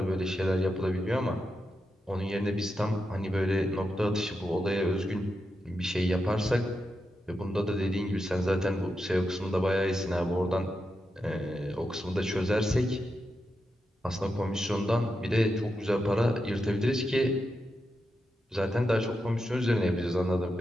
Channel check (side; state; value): both; normal; correlation 0.87